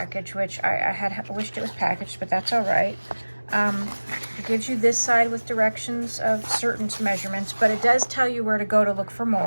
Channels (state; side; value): inverted; both; correlation -1.00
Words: which I had wished it was packaged, but that's all right. It gives you this side with directions of certain measurements, but it does tell you where to go to look for